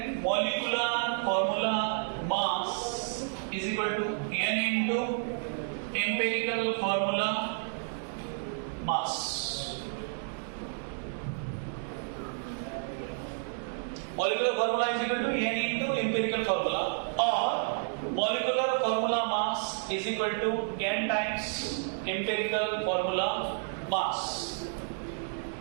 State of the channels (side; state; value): left; silent; 57 dB below the other